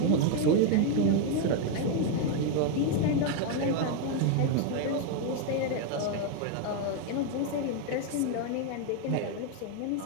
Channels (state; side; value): different; both; correlation 0.01